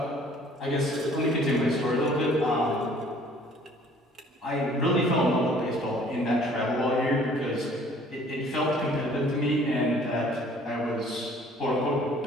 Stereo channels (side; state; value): both; normal; correlation 0.55